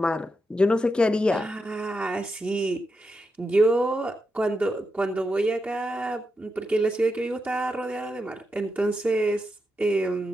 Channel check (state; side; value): normal; both; correlation 0.86